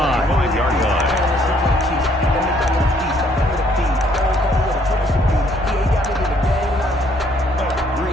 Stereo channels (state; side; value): normal; both; correlation 0.65